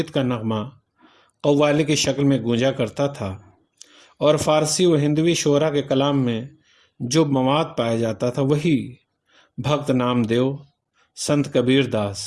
کا نغمہ قوالی کی شکل میں گونجا کرتا تھا، اور فارسی و ہندوی شعراء کے کلام میں جو مواد پایا جاتا تھا وہی بھکت نام دیو، سنت کبیر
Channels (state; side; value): identical; both; correlation 1.00